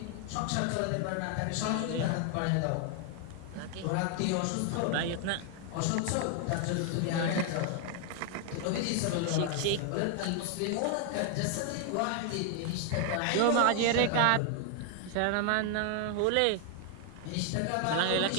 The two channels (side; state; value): both; different; correlation 0.00